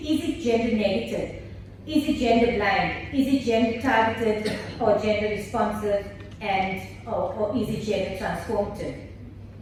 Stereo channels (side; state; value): both; identical; correlation 1.00